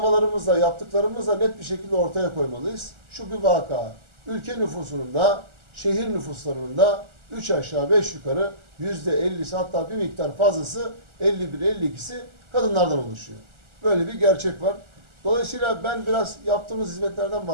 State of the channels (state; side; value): late; left; 1.4 ms